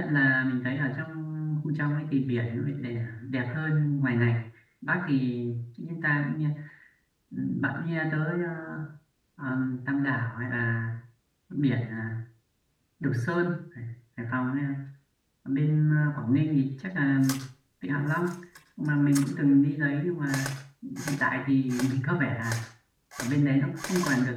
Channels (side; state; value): both; identical; correlation 1.00